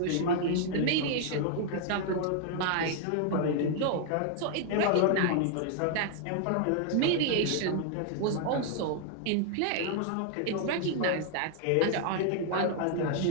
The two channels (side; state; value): both; different; correlation 0.00